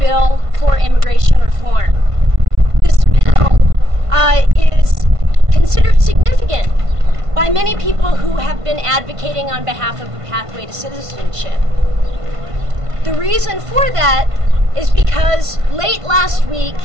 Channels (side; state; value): left; late; 1.5 ms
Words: for immigration reform. This bill is considered significant by many people who have been advocating on behalf of a pathway to citizenship. The reason for that is because late last week,